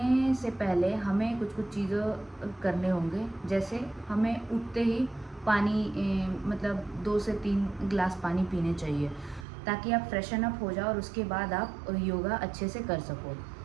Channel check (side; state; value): left; drops out; at 9.5 s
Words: से पहले हमें कुछ कुछ चीज़ें करने होंगे। जैसे हमें उठते ही पानी मतलब 2 से 3 गिलास पानी पीने चाहिए, ताकि आप फ्रेशन अप हो जाओ और उसके बाद आप योगा अच्छे से कर सको।